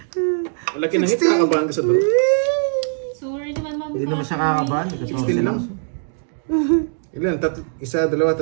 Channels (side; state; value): left; silent; 63 dB below the other